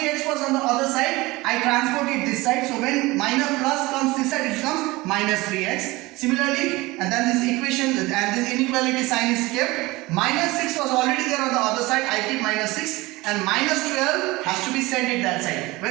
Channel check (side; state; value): left; quieter; 21.2 dB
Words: was on the other side, I transport it this side, so when minus plus comes this side, it becomes minus 3x. Similarly, and then this equation and this inequality sign is kept. Minus 6 was already there on the other side, I keep minus 6, and minus 12 has to be sent it that side.